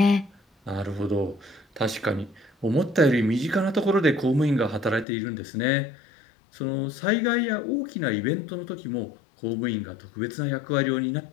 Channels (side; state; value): right; drops out; at 5.1 s